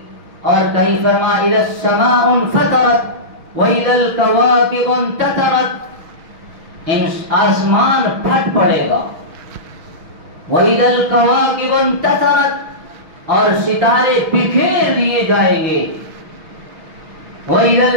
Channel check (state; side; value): late; left; 6.3 ms